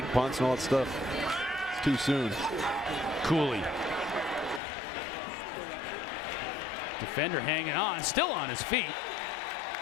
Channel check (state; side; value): drops out; right; at 4.6 s